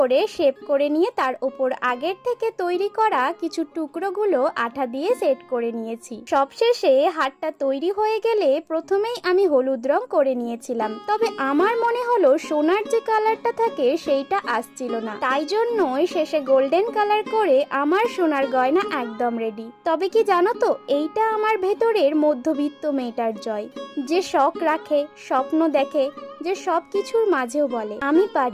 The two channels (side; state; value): both; identical; correlation 1.00